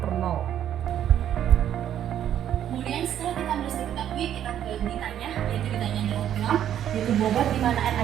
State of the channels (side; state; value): left; quieter; 10.5 dB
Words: mol. Kemudian setelah kita bisa ketahui, kita ke ditanya, yaitu ditanya adalah gram, yaitu bobot di mana